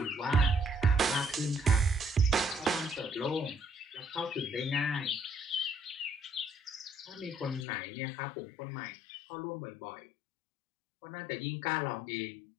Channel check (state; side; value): drops out; right; at 7.7 s